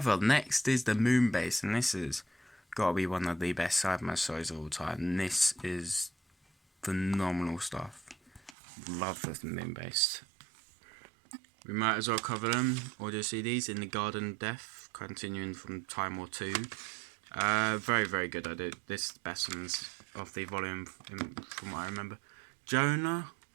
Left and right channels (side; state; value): left; drops out; at 8.6 s